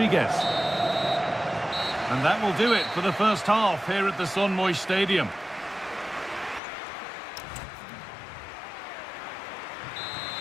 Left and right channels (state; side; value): drops out; right; at 6.6 s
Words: And that will do it for the first half here at the Son Moix Stadium.